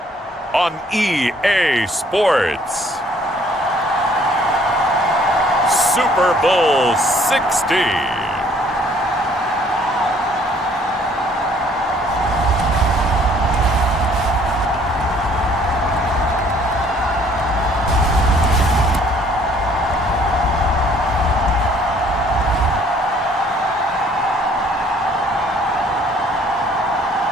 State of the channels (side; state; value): both; normal; correlation 0.60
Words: on EA Sports, Super Bowl 60.